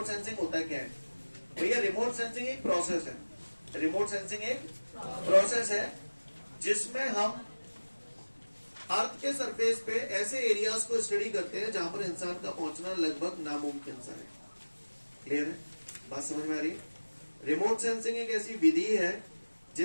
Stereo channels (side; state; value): both; inverted; correlation -1.00